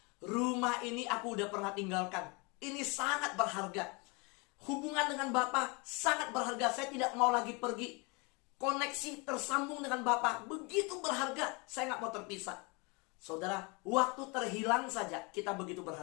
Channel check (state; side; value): quieter; right; 29.5 dB